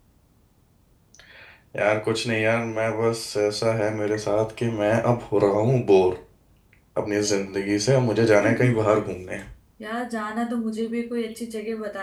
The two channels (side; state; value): both; identical; correlation 1.00